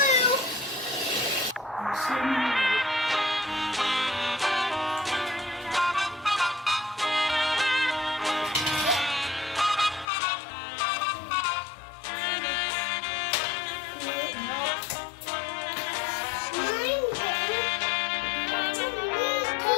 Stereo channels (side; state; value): right; drops out; at 10.1 s